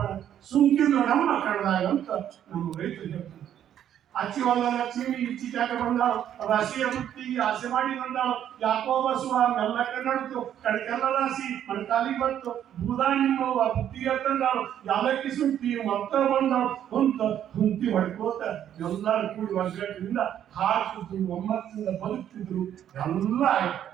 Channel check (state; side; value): quieter; left; 10.3 dB